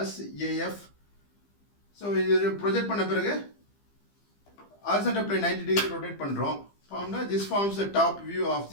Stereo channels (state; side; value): late; right; 15 ms